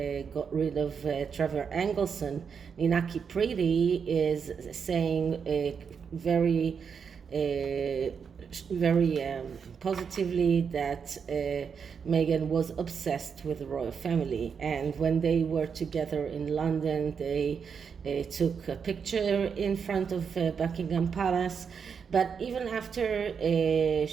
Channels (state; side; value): quieter; left; 6.4 dB